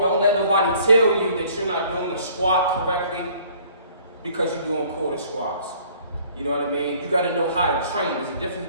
let nobody tell you that you're not doing the squat correctly because you're doing quarter squats. You know what I mean? You got to know how to train.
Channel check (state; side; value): inverted; both; correlation -0.56